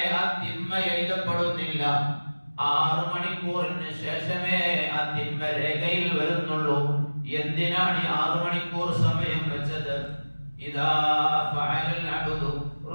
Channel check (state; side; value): inverted; both; correlation -1.00